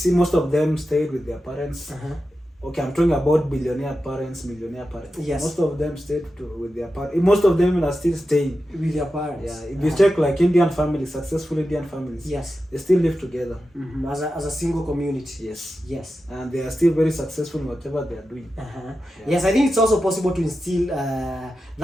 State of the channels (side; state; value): both; normal; correlation 0.91